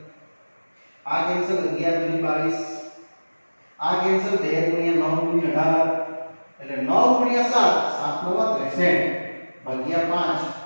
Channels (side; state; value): both; inverted; correlation -1.00